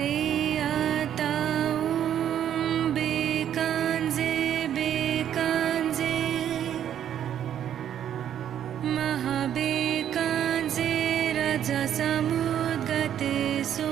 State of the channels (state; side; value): quieter; left; 10.1 dB